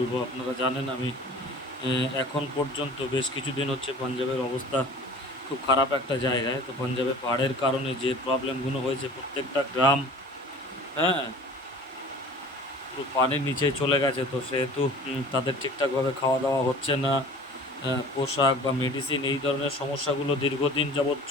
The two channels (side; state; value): both; normal; correlation 0.44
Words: আপনারা জানেন আমি এখন পর্যন্ত বেশ কিছুদিন হচ্ছে পাঞ্জাবের অবস্থা খুব খারাপ একটা জায়গায়। তো পাঞ্জাবে পাহাড়ের কারণে যে প্রবলেমগুলো হয়েছে, প্রত্যেকটা গ্রাম, হ্যাঁ, পুরো পানির নিচে চলে গেছে। তো সেহেতু তাদের ঠিকঠাকভাবে খাওয়া দাওয়া হচ্ছে না, পোশাক বা মেডিসিন এই ধরনের সমস্যাগুলো দীর্ঘদিন যাবৎ